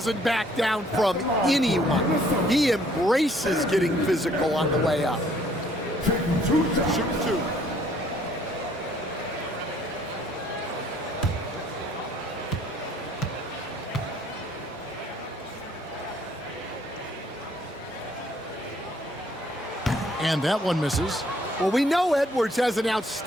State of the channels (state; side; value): normal; both; correlation 0.62